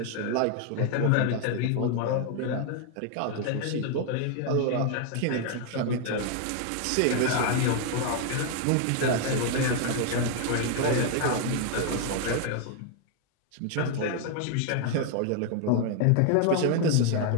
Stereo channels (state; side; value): different; both; correlation 0.00